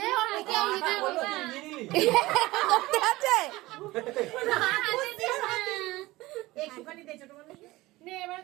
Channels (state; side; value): quieter; left; 19.3 dB